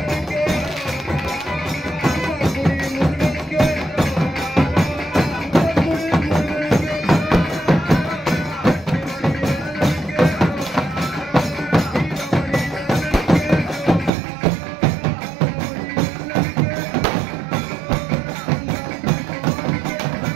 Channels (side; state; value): left; drops out; at 14.1 s